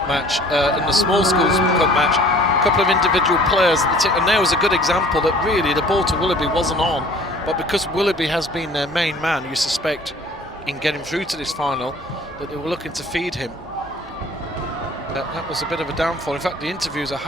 match, in the small Schools Cup match, a couple of individual players, and there was a good example that really the ball to Willoughby wasn't on, but because Willoughby has been their main man, you suspect, in getting through to this final, that they were looking to feed him. That was a bit of a downfall. In fact, the interviews I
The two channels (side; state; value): both; normal; correlation 0.51